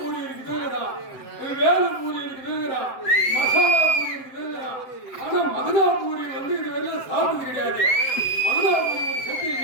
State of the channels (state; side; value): late; right; 7.8 ms